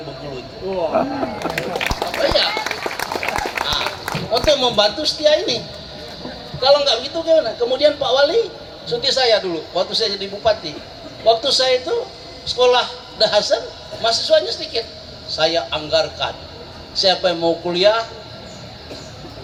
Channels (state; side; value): identical; both; correlation 1.00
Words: Bengkulu itu. Apa ya? Nah, untuk membantu Setia ini. Kalau nggak begitu gimana? Kemudian Pak Wali cuti saya dulu waktu saya jadi bupati. Waktu saya itu sekolah Dahasan, mahasiswanya sedikit. Saya anggarkan. Siapa yang mau kuliah,